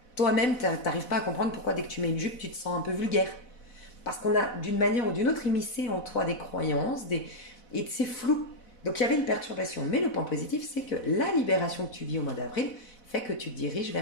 toi-même, tu n'arrives pas à comprendre pourquoi dès que tu mets une jupe, tu te sens un peu vulgaire. Parce qu'on a, d'une manière ou d'une autre, immiscé en toi des croyances, et c'est flou. Donc il y avait une perturbation. Mais le point positif, c'est que la libération que tu vis au mois d'avril fait que tu te diriges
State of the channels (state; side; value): late; right; 4.1 ms